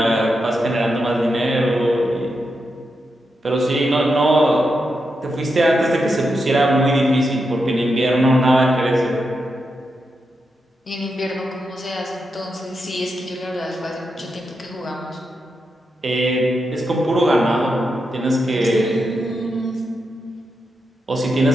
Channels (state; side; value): normal; both; correlation 0.86